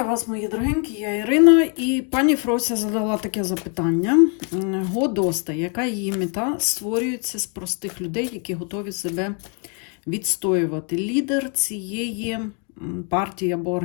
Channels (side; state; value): right; quieter; 36.9 dB